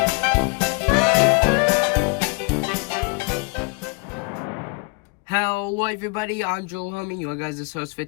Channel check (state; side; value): quieter; right; 30.9 dB